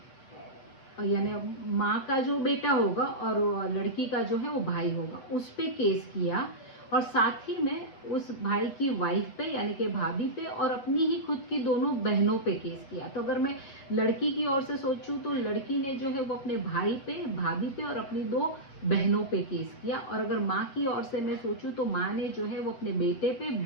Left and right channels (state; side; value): late; right; 7.5 ms